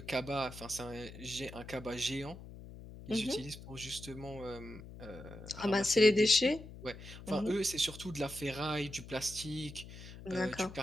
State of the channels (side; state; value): left; noise; hum, 14 dB below the sound